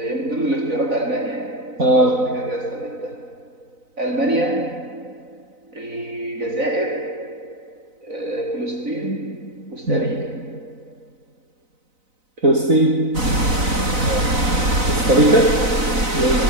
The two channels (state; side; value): late; left; 4.0 ms